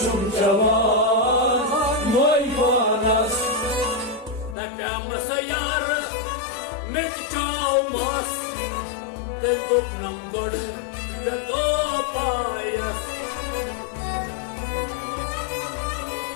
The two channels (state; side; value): drops out; right; at 4.5 s